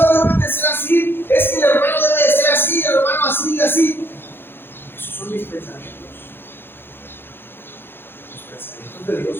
deben de ser así, es que el hermano debe de ser así, el hermano así y así. Esos son mis pensamientos. Los pensamientos de Dios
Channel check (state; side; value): late; right; 0.10 ms